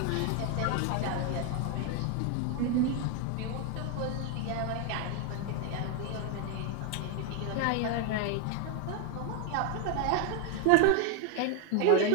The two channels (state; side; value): different; both; correlation 0.01